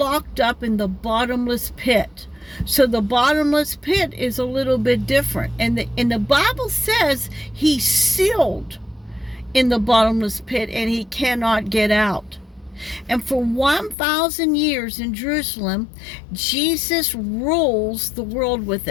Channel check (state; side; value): drops out; right; at 14.0 s